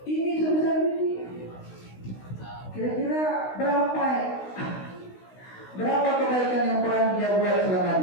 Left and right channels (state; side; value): late; right; 16 ms